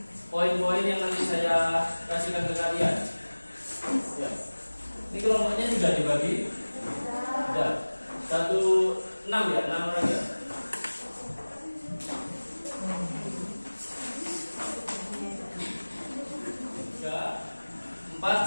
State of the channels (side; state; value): both; inverted; correlation -1.00